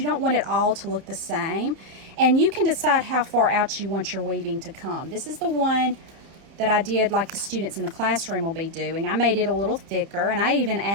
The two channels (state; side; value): late; left; 30 ms